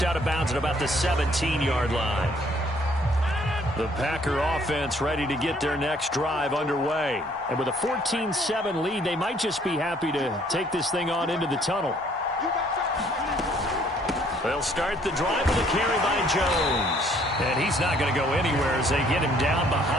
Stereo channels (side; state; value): both; normal; correlation 0.62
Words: out of bounds at about the 17-yard line. The Packer offense ready to get their next drive underway. And with a 14-7 lead, they might just be happy to take this thing on into the tunnel. They'll start the drive with a carry by Jones. And he's not going to go anywhere as they get him down